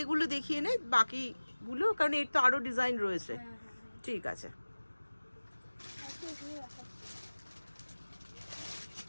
এগুলো দেখিয়ে নে বাকিগুলো, কারণ এর তো আরো ডিজাইন রয়েছে। ঠিক আছে,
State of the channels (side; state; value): both; inverted; correlation -1.00